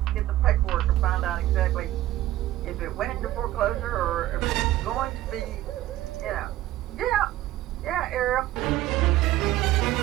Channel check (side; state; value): left; quieter; 14.9 dB